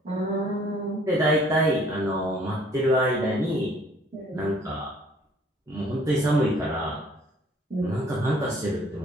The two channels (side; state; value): both; normal; correlation 0.58